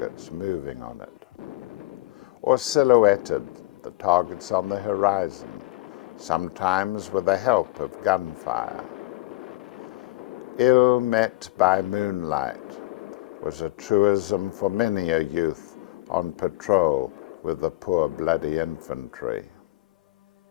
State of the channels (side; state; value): right; quieter; 19.7 dB